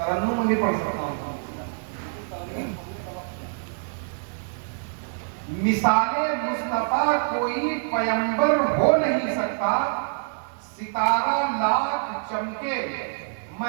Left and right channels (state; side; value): silent; left; 61 dB below the other